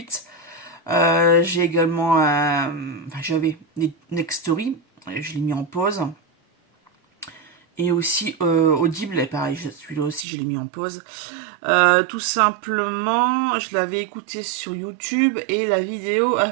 J'ai également, enfin j'avais Nextory, je l'ai mis en pause. Et aussi Audible, et pareil, celui-là aussi je l'ai mis en pause. Tout simplement, je l'avais écouté sur YouTube et la vidéo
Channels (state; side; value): drops out; left; at 10.2 s